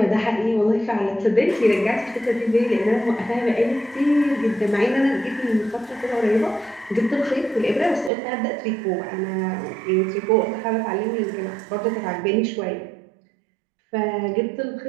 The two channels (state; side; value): drops out; left; at 8.1 s